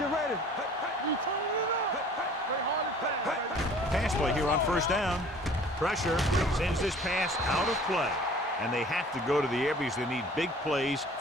ready. We turning it up. Play hard and fast, baby. Pass play here on 1st down. Pressure sends this pass out of play. And they have to go to the air because they need big plays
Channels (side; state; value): both; normal; correlation 0.49